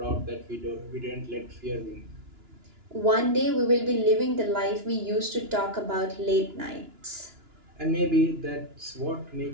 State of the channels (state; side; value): late; left; 2.9 ms